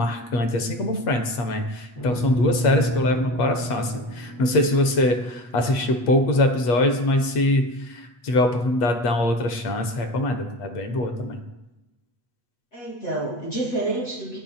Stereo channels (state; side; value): late; right; 8.2 ms